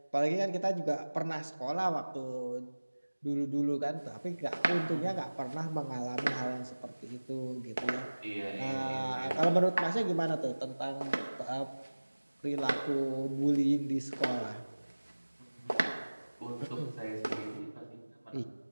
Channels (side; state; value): both; inverted; correlation -1.00